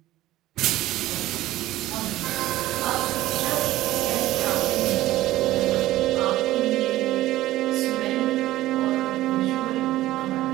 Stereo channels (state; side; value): quieter; left; 15.7 dB